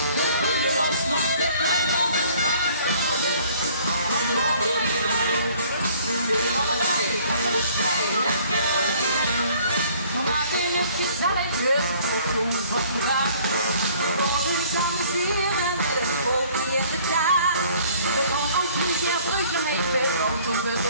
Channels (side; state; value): both; inverted; correlation -0.55